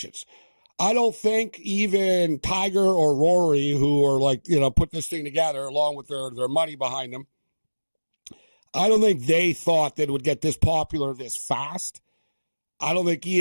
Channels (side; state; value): both; inverted; correlation -1.00